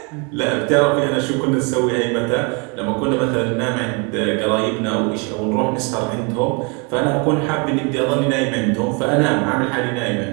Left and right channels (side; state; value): left; quieter; 33.1 dB